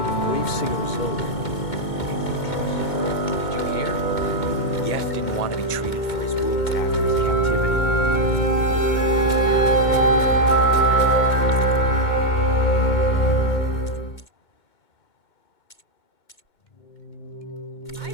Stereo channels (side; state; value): right; late; 2.2 ms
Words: of brave Singer Isolde. Did you hear? Yef didn't want to be treated for his wounds after his captivity. I